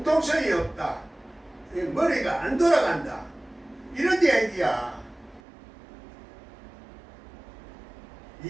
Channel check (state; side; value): drops out; left; at 5.4 s